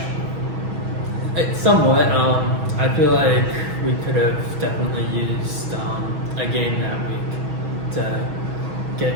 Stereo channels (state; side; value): late; left; 6.2 ms